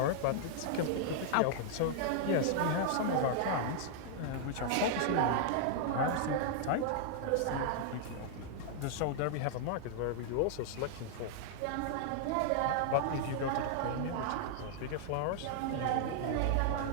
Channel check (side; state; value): both; different; correlation -0.01